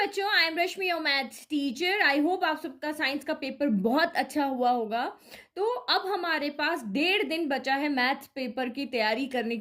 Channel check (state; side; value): identical; both; correlation 1.00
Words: बच्चों, I am Rashmi your maths teacher. I hope आप सबका साइंस का पेपर बहुत अच्छा हुआ होगा। तो अब हमारे पास 1.5 दिन बचा है मैथ्स पेपर की तैयारी करने